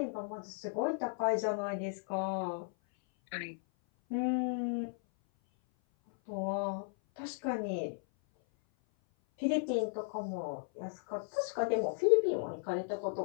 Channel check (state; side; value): silent; right; 54 dB below the other